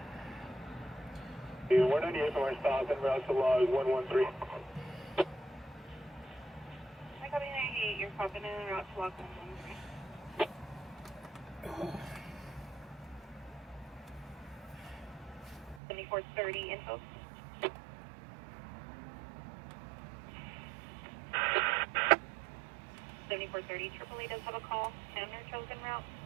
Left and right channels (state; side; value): drops out; left; at 15.8 s